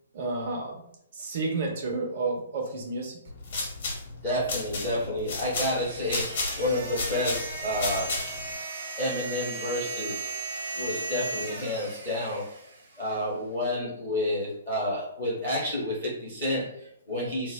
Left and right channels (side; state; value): both; inverted; correlation -0.39